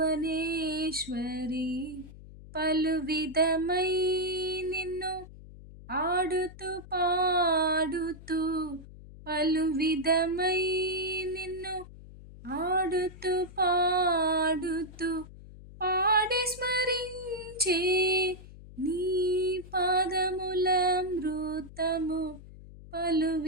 పలు విధమై నిన్ను ఆడుతూ పాడుతూ పలు విధమై నిన్ను ఆడుతూ పాడుతూ పాడి స్మరించే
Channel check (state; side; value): noise; left; hum, 17 dB below the sound